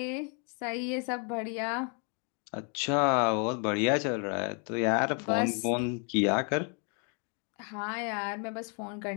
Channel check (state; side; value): quieter; right; 38.3 dB